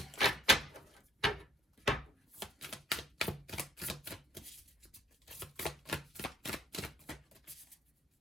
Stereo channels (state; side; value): normal; both; correlation 0.63